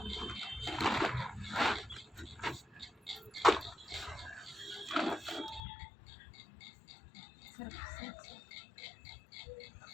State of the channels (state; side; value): drops out; right; at 5.6 s